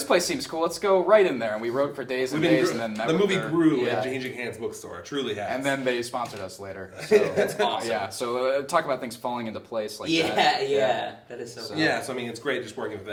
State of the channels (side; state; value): both; identical; correlation 1.00